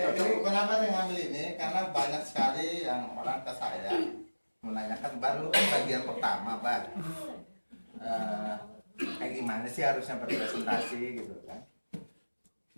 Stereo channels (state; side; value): inverted; both; correlation -1.00